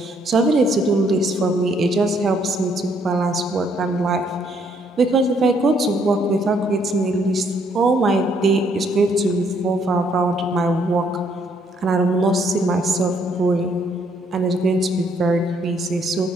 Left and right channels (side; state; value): both; normal; correlation 0.69